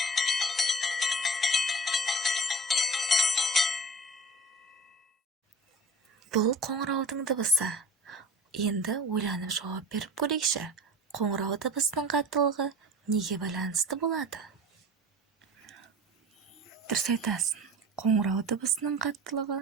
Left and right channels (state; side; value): normal; both; correlation 0.39